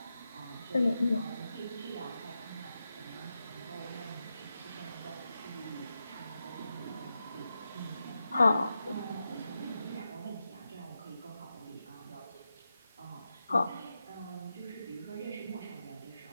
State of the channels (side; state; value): both; inverted; correlation -0.89